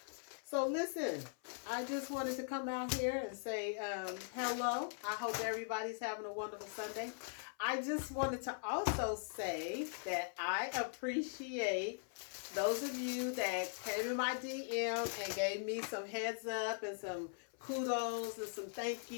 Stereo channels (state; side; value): silent; right; 50 dB below the other